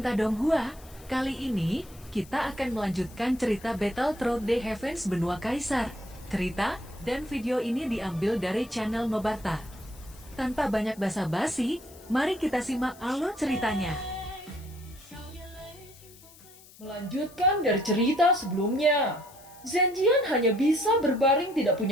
Donghua, kali ini kita akan melanjutkan cerita Battle Through the Heavens Benua Kaisar. Cerita dan video ini diambil dari channel Mebarta. Tanpa banyak basa-basi, mari kita simak alur ceritanya. Melanjutkan dari cerita sebelumnya, Zenjian hanya bisa berbaring, tidak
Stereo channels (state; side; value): noise; left; hiss, 22 dB below the sound